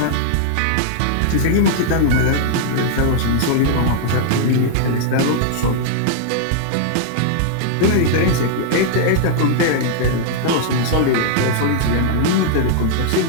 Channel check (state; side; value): different; both; correlation -0.01